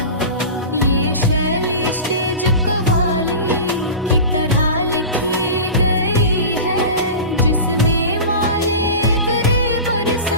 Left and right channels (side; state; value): both; inverted; correlation -0.31